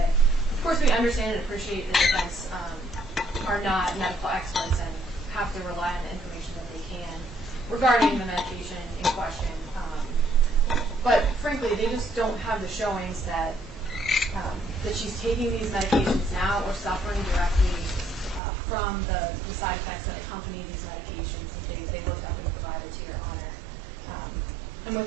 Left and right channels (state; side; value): drops out; left; at 18.4 s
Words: Of course, we understand and appreciate the defense are not medical experts and have to rely on the information that they can regarding the medication in question. But frankly, they just don't have the showings that she's taking these medications now or suffering directly from the side effects that accompany these medications that they looked up and provided to Your Honor. And